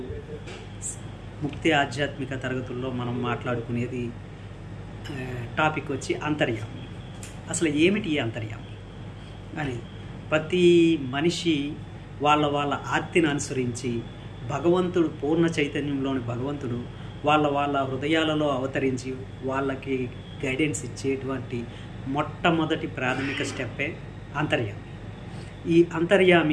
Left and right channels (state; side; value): identical; both; correlation 1.00